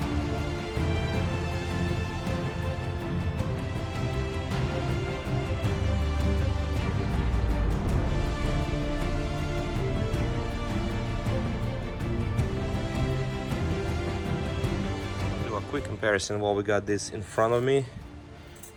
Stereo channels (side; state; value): both; identical; correlation 1.00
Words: Quick comparison while we got this in front of me.